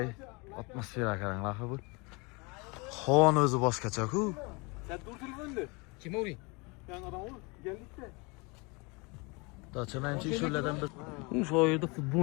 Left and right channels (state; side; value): quieter; right; 28.5 dB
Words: atmosfera qaranglar bu. Xon o'zi boshqacha-ku. Sen dur telefonda. Kim o'ring? Yan adam ol, geldikda. Dacha menchi shulardan bir Shu yerda